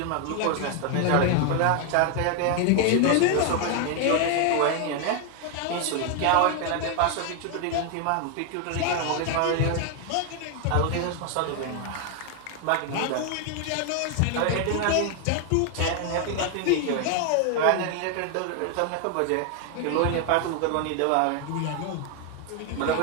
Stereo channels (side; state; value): both; different; correlation 0.01